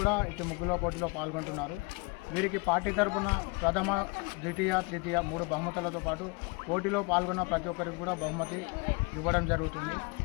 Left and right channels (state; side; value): quieter; right; 28.9 dB